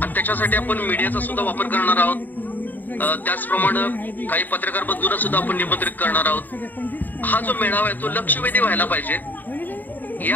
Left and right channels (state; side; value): late; right; 0.087 ms